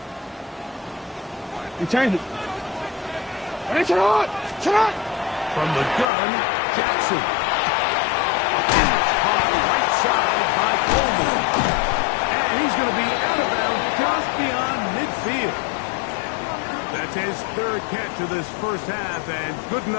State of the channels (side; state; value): right; drops out; at 6.1 s